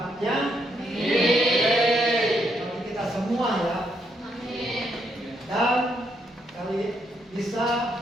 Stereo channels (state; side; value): normal; both; correlation 0.76